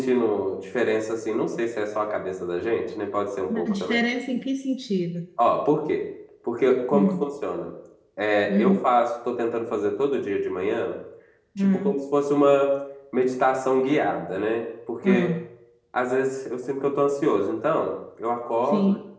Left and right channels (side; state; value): both; identical; correlation 1.00